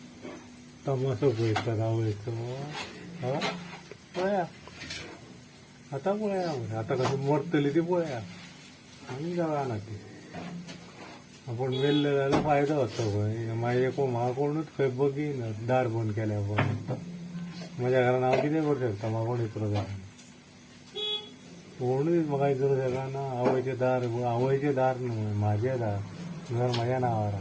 तमासो पळयतात आवयचो पळया आतां पळया आतां कशी मरतली ती पळया आमी जाणा ती आपूण मेल्ले जाल्यार फायदो जाता पळय मागीर म्हाका कोणूच खंय बगीना दार बंद केल्या पळय म्हज्या घरान हांव कितें करूं शकता म्हाका कोण इतलो जाय कोणूच म्हाका इतलो शकना आवयचें दार न्हू म्हाजें दार घर म्हाज्या नांवार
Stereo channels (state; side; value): identical; both; correlation 1.00